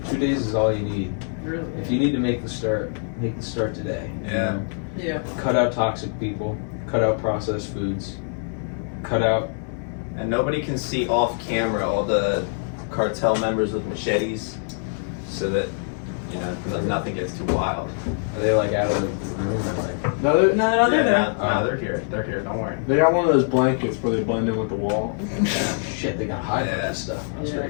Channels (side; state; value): right; silent; 59 dB below the other